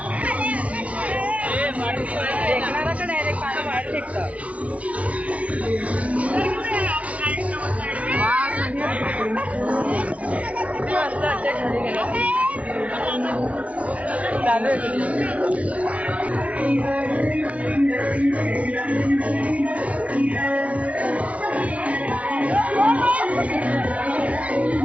फेकणारा का डायरेक्ट पाणी बाहेर फेकतं. चालू आहे.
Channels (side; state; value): left; late; 0.065 ms